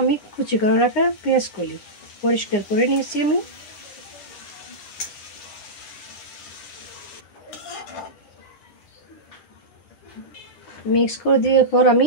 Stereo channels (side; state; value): right; late; 9.8 ms